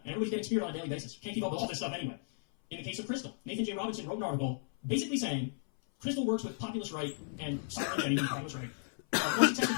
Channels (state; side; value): silent; right; 55 dB below the other